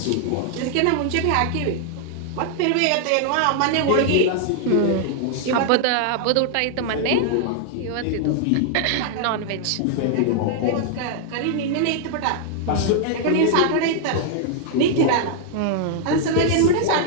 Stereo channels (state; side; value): different; both; correlation 0.00